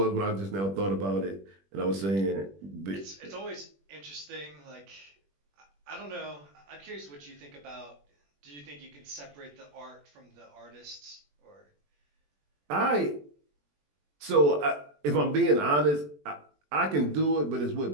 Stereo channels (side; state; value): left; late; 21 ms